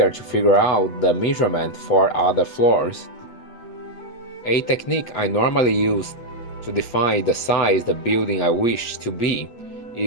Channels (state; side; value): late; right; 8.2 ms